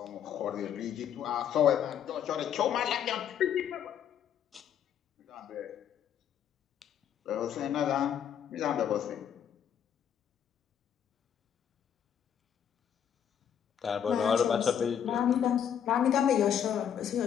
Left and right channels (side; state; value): right; quieter; 8.9 dB